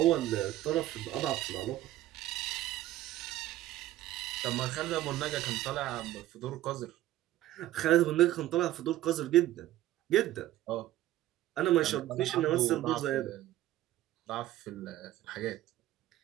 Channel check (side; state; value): left; quieter; 14.4 dB